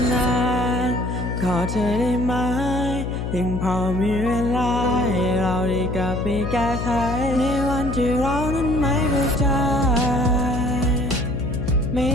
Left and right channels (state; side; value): noise; left; hum, 3 dB below the sound